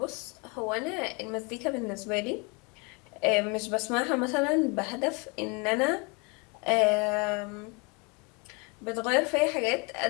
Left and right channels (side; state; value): right; quieter; 31.0 dB